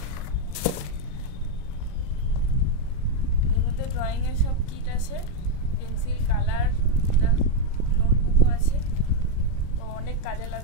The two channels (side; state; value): right; late; 34 ms